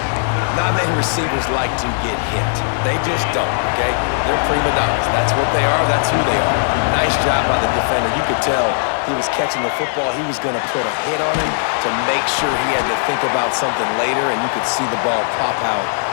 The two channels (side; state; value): right; silent; 67 dB below the other